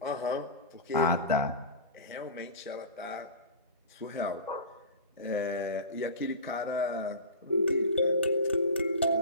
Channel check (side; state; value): both; inverted; correlation -0.30